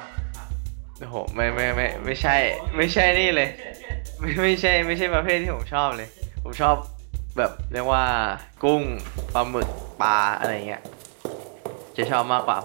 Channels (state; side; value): silent; left; digital silence